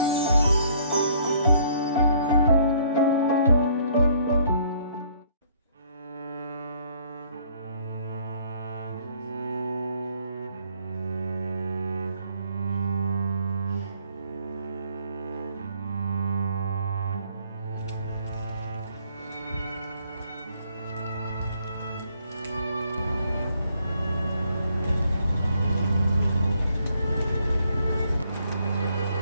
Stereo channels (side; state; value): both; inverted; correlation -0.64